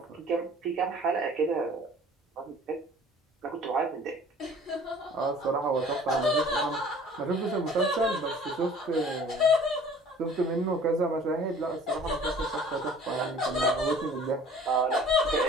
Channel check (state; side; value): normal; both; correlation 0.50